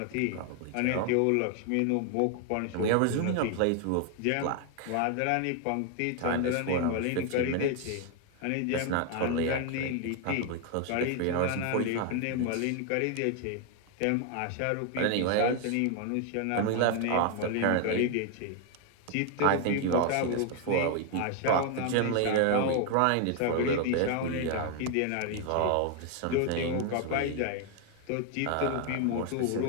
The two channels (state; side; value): different; both; correlation 0.01